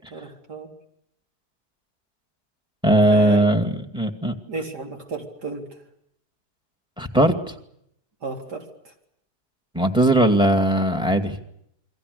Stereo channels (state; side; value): normal; both; correlation 0.53